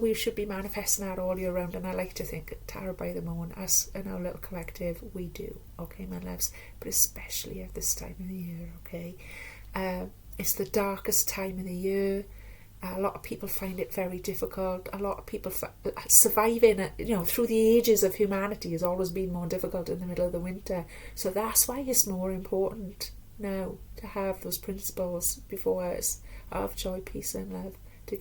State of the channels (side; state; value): both; identical; correlation 1.00